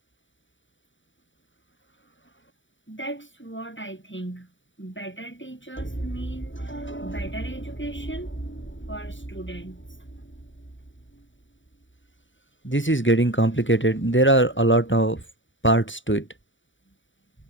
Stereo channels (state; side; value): late; right; 0.55 ms